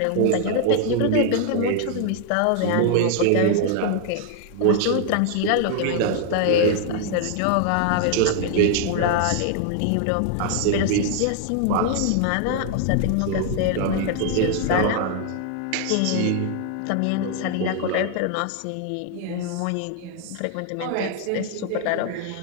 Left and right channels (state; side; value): different; both; correlation 0.00